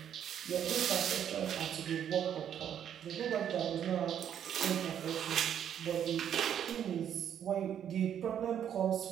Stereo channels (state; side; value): quieter; left; 9.4 dB